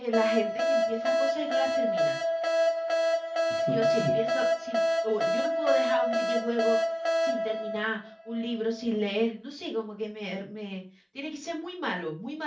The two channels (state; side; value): identical; both; correlation 1.00